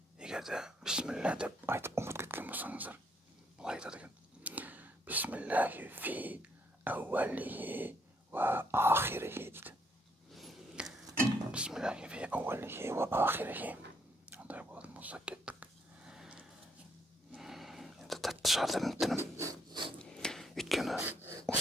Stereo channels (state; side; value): normal; both; correlation 0.71